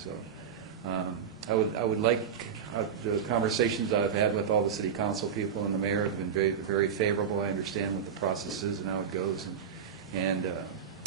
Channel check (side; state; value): left; quieter; 7.4 dB